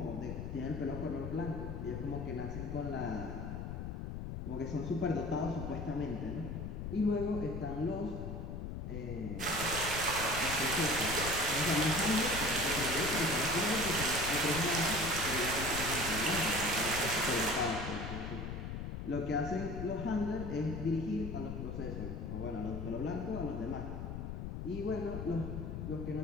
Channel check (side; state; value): left; noise; rumble, 5 dB below the sound